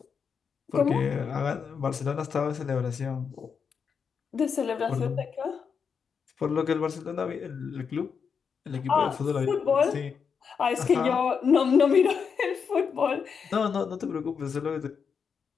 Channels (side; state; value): right; quieter; 6.3 dB